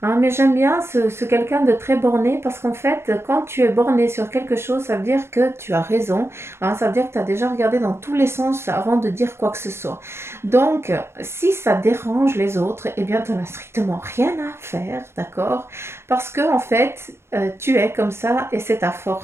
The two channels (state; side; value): late; left; 0.12 ms